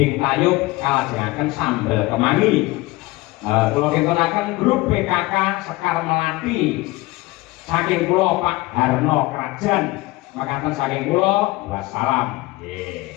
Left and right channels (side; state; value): right; quieter; 20.7 dB